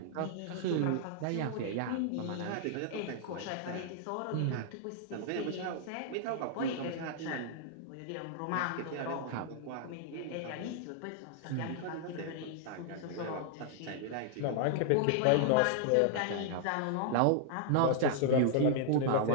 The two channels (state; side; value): different; both; correlation -0.01